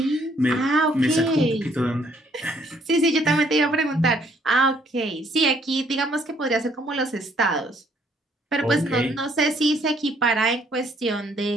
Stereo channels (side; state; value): both; normal; correlation 0.66